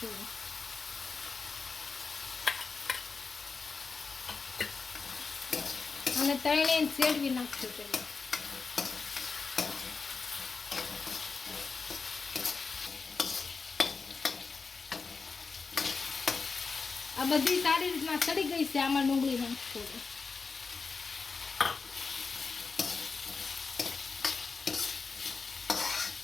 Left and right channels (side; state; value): right; quieter; 4.7 dB